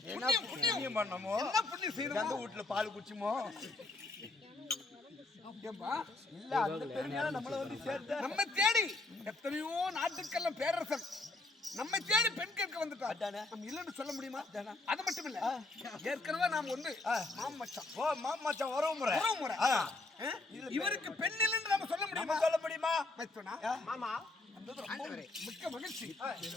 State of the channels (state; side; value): quieter; right; 3.1 dB